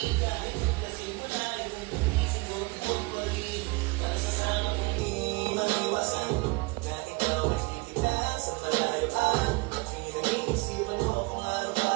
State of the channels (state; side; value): quieter; left; 26.2 dB